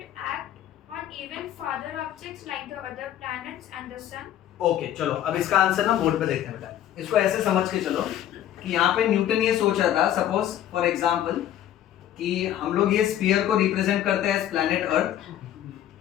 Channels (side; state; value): right; quieter; 11.6 dB